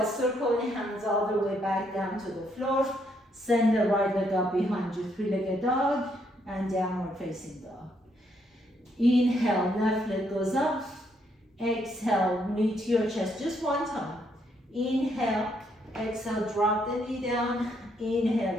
Circle your hands all the way back down to the floor. Send the right leg up behind you, three-legged dog and downward facing dog. Inhale, left leg goes up. Exhale, knee to your chest just one time. Inhale, exhale, drop the knee down.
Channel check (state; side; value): normal; both; correlation 0.73